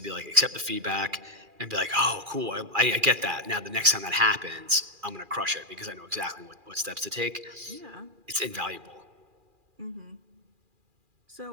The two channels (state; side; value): late; left; 2.4 ms